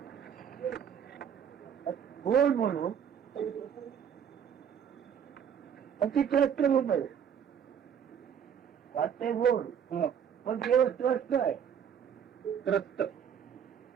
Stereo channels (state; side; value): quieter; left; 8.2 dB